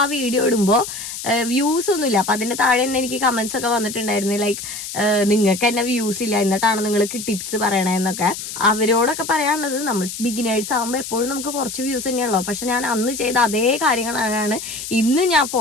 ആ വീഡിയോ ഇടുമ്പോൾ വ്യൂസ് ഒന്നുമില്ല. അപ്പൊ അതിന്റെ താഴെ തന്നെ എനിക്ക് കമന്റ്സ് ഒക്കെ വന്നിട്ടുണ്ടായിരുന്നു, ലൈക്ക് നിങ്ങൾക്ക് തന്നെ വ്യൂസ് ഇല്ല, എന്നിട്ടാണ് നിങ്ങൾക്ക് ടിപ്സ് പറയണെന്നൊക്കെ. അവരോടൊക്കെ പറയാനുള്ളത്, നമ്മൾ ബിഗിനേഴ്സ് ആകുമ്പോൾ എപ്പോഴും നമുക്ക് കുറച്ച് വ്യൂസ് തന്നെയുള്ളൂ. പക്ഷെ ഞാൻ അന്ന് ചെയ്ത അതേ കാര്യങ്ങളാണ് ഇന്ന് ഞാൻ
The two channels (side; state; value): left; noise; hiss, 8 dB below the sound